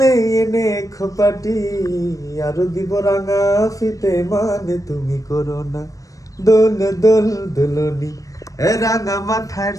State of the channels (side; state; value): right; late; 0.16 ms